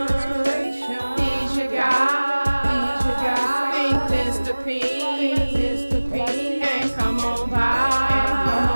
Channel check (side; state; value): both; inverted; correlation -1.00